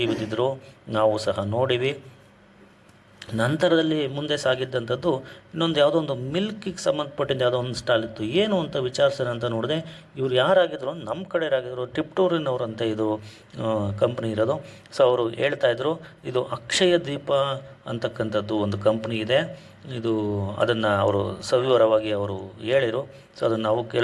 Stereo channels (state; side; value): identical; both; correlation 1.00